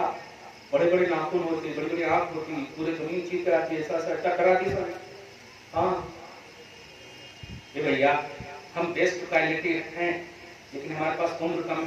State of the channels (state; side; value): identical; both; correlation 1.00